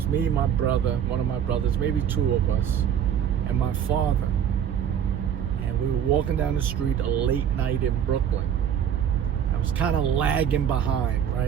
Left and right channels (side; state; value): left; quieter; 8.9 dB